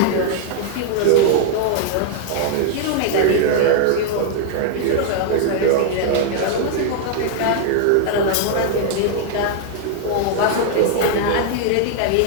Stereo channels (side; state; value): both; different; correlation 0.00